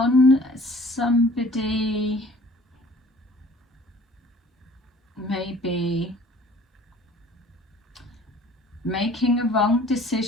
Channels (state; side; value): normal; both; correlation 0.51